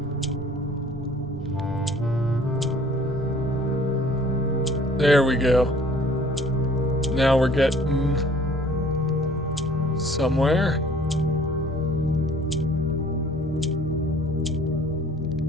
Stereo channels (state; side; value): normal; both; correlation 0.53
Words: There we go. Now we're getting somewhere.